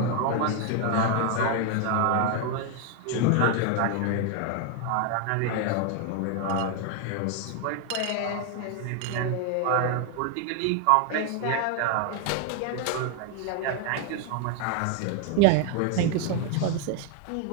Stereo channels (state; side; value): different; both; correlation 0.01